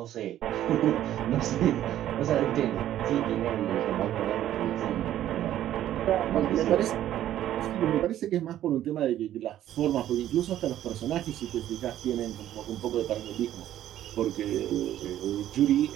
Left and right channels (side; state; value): left; quieter; 12.2 dB